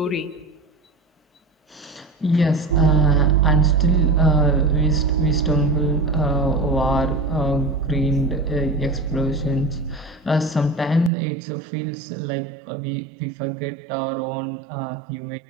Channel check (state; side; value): drops out; left; at 11.1 s